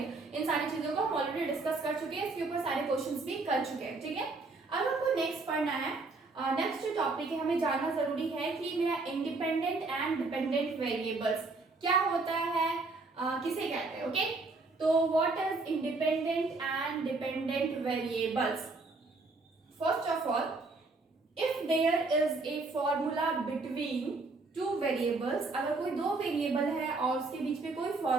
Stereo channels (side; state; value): left; quieter; 3.6 dB